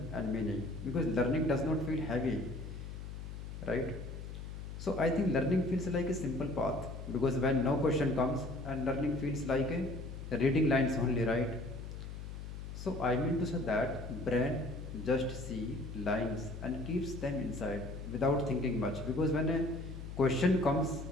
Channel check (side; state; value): left; noise; hum, 9 dB below the sound